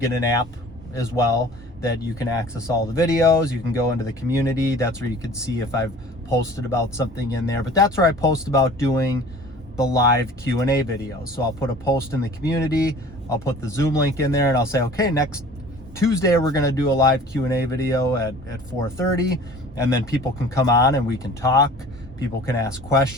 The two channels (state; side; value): normal; both; correlation 0.46